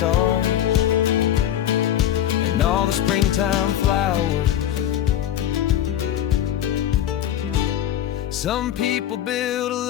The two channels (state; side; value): quieter; right; 11.3 dB